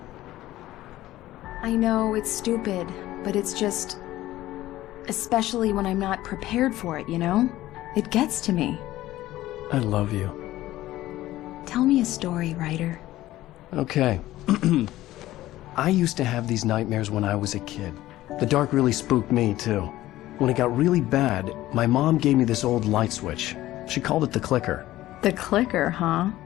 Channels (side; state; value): right; quieter; 15.5 dB